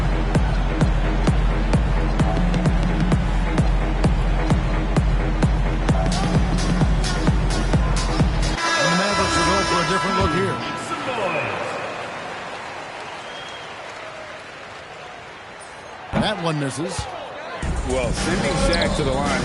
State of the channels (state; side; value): identical; both; correlation 1.00